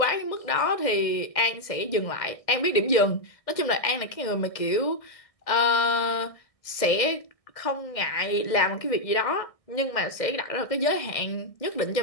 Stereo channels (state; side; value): late; right; 1.6 ms